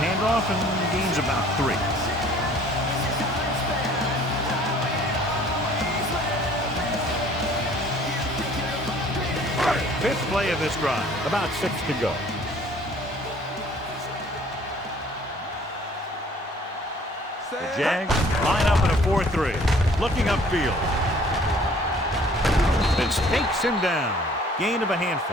and gains about 3. Fifth play of this drive. About 6 to go. The Jags line up in a 4-3. Looking upfield. Vince takes him down. Gain of a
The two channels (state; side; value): normal; both; correlation 0.55